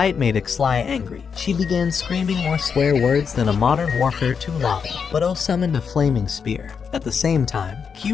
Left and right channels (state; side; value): quieter; right; 6.3 dB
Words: made Ixli angry, she began screaming more swear words than a Modern Warfare 2 lobby, but O summoned a flaming spear. At the same time,